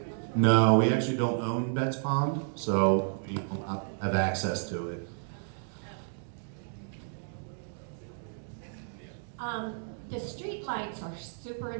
No, we actually don't own Betts Pond, so we don't have access to it. The street lights are super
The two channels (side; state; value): left; silent; digital silence